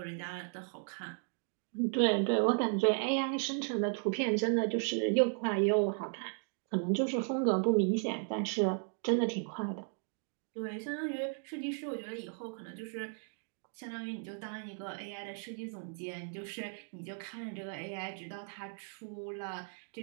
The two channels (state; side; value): silent; left; 54 dB below the other